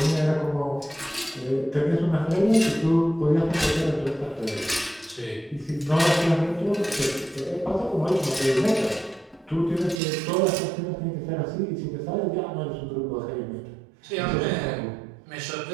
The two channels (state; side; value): drops out; left; at 10.0 s